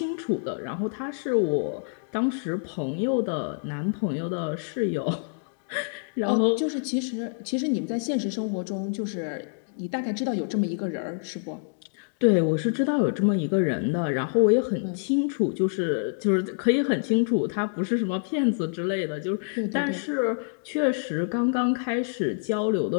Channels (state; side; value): silent; right; digital silence